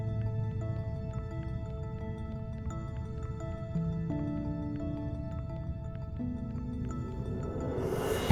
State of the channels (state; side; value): identical; both; correlation 1.00